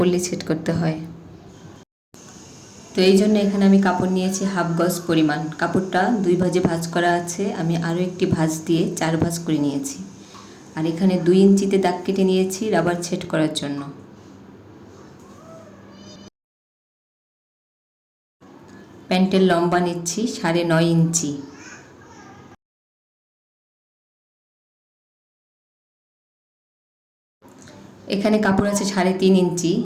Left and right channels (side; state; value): both; identical; correlation 1.00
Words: সেট করতে হয়। তো এই জন্য এখানে আমি কাপড় নিয়েছি হাফ গজ পরিমাণ। কাপড়টা 2 ভাঁজে ভাঁজ করা আছে, আমি আরও একটি ভাঁজ দিয়ে 4 ভাঁজ করে নিয়েছি। আর এখানে 2 ইঞ্চিতে দাগ কেটে নিয়েছি রাবার সেট করার জন্য। প্যান্টের লম্বা নিচ্ছি 9.5 ইঞ্চি। এখানে কাপড় আছে 3.5 ইঞ্চি